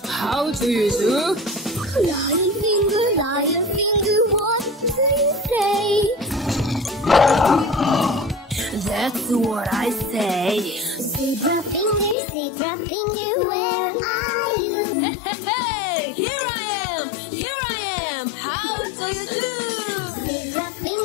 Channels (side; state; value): right; drops out; at 12.2 s